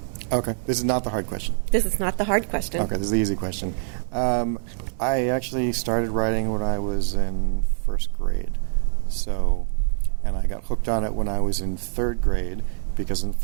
Okay, this is not the hard question. This is not the hard question. Okay, this is the easy question. I actually started writing when I was in first grade. And I got hooked on it when I was in third grade, because in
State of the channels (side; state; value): left; silent; 62 dB below the other